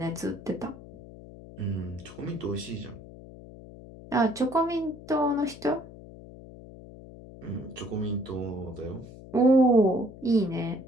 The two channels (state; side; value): noise; left; hum, 17 dB below the sound